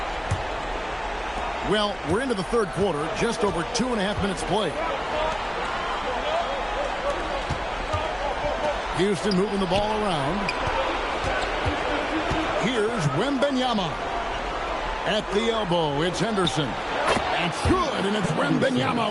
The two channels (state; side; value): identical; both; correlation 1.00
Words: Well, we're into the third quarter, just over 2.5 minutes played. Houston moving the ball around. Here's Wembanyama. At the elbow, it's Henderson. It's good, and it's Wembanyama